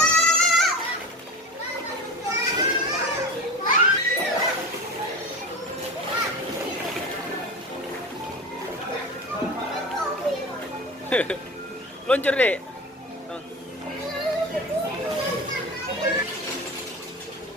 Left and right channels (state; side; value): normal; both; correlation 0.30